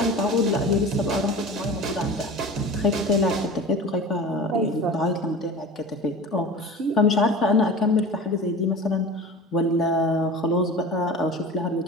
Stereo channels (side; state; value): both; normal; correlation 0.35